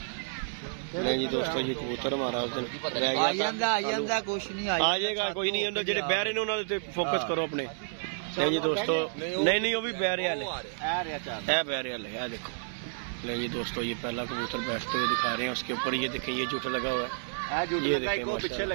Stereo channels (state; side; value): silent; left; 58 dB below the other